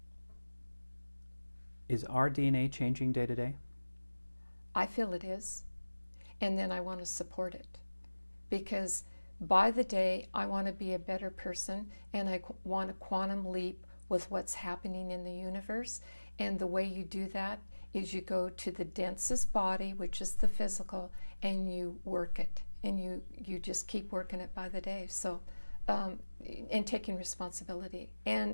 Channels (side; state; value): both; inverted; correlation -1.00